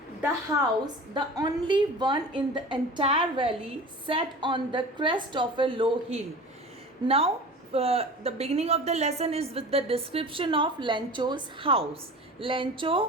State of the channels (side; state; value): both; normal; correlation 0.37